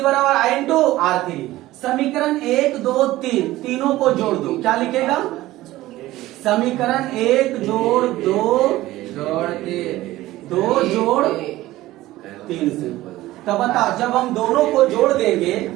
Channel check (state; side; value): quieter; left; 16.7 dB